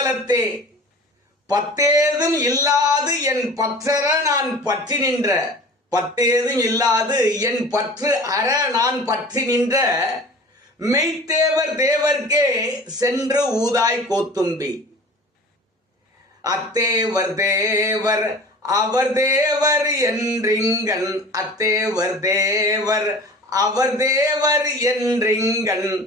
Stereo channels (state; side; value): normal; both; correlation 0.40